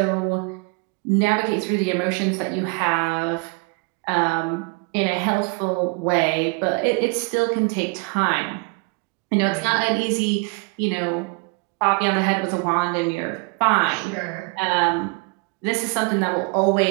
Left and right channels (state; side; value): quieter; left; 30.2 dB